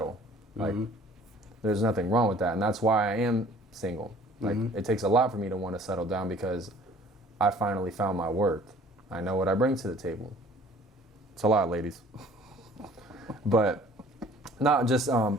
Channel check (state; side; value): normal; both; correlation 0.52